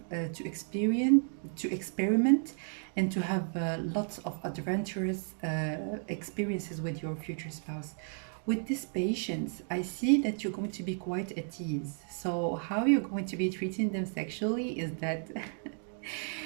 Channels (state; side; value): silent; left; 56 dB below the other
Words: to experiment and to have lots of adventurous experiences with your future spouse. With this patience, I see that you're going to be quite at ease. So how you're going to be treating them sexually is that